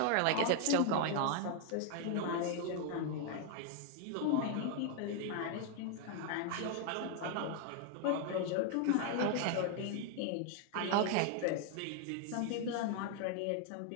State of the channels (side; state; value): both; different; correlation 0.00